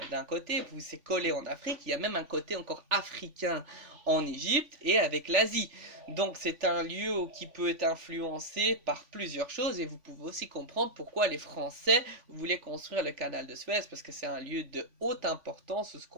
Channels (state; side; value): late; left; 3.5 ms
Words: d'un côté, vous c'est collé en Afrique. Il y a même un côté encore africain en Égypte et avec l'Asie. Donc c'est un lieu qui peut être influencé par plusieurs choses et vous pouvez aussi comprendre pourquoi les Français voulaient construire le canal de Suez parce que c'est un lieu de haute importance où